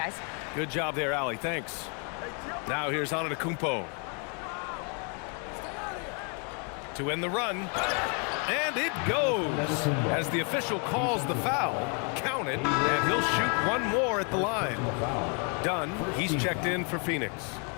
Good job there, Allie. Thanks. Now here's Antetokounmpo. To end the run. And it goes. As the official calls the foul, count it, and he'll shoot one more at the line. Dunn, he's checked in for Phoenix.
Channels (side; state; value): right; quieter; 37.7 dB